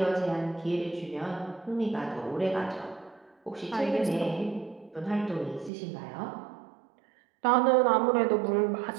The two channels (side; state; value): left; drops out; at 5.7 s